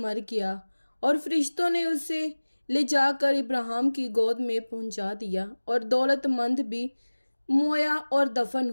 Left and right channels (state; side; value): inverted; both; correlation -1.00